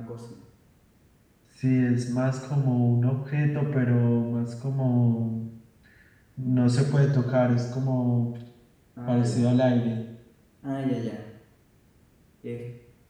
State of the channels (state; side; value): identical; both; correlation 1.00